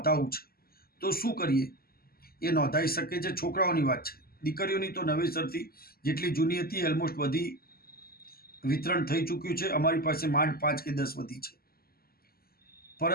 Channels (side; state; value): right; late; 0.44 ms